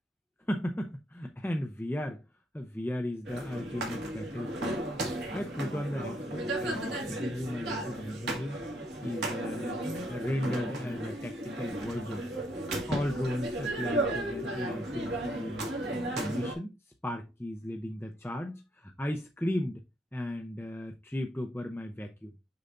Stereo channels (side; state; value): both; normal; correlation 0.74